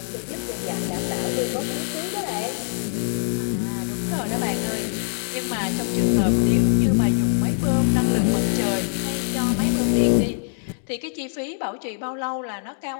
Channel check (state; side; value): silent; right; digital silence